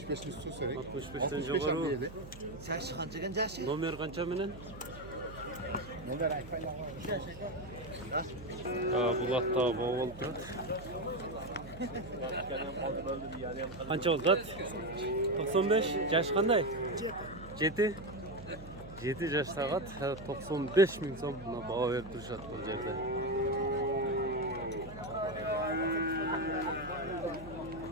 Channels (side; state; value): right; noise; hum, 15 dB below the sound